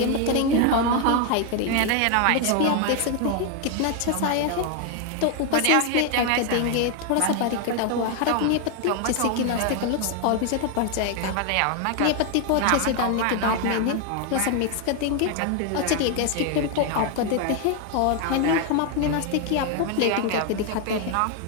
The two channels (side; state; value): both; different; correlation 0.01